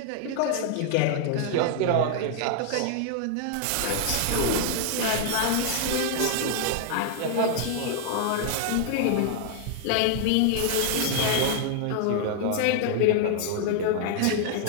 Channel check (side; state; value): both; different; correlation 0.00